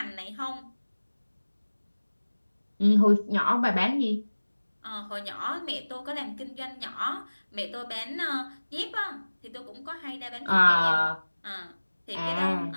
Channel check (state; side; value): inverted; both; correlation -1.00